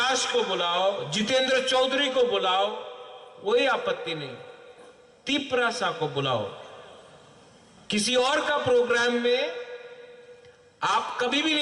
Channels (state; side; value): identical; both; correlation 1.00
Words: को बुलाओ, जितेंद्र चौधरी को बुलाओ, कोई आपत्ति नहीं। तिपरासा को बुलाओ। किसी और का प्रोग्राम में आप कभी भी